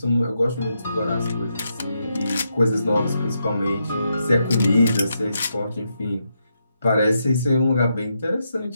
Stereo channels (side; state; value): both; inverted; correlation -0.82